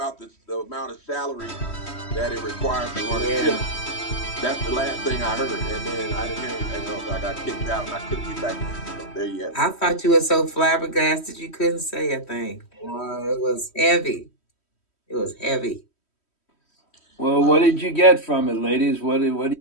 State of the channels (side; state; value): right; late; 3.1 ms